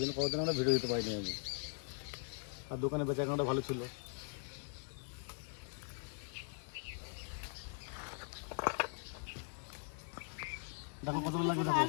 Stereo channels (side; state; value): right; silent; 51 dB below the other